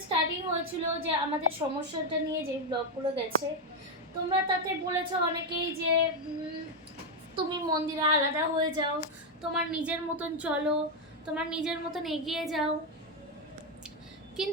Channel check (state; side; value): normal; both; correlation 0.04